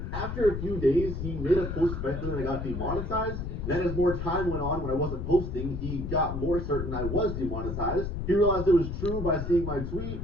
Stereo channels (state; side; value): noise; left; rumble, 5 dB below the sound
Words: After a few days, he made a post especially when I got demonetized. Then as more time went on when I wasn't posting, he got more certain I was demonetized. He realized it was true by seeing my tweet